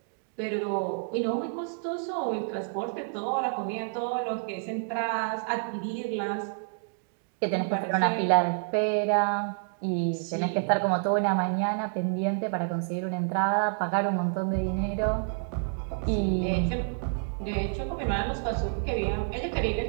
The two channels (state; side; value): silent; left; digital silence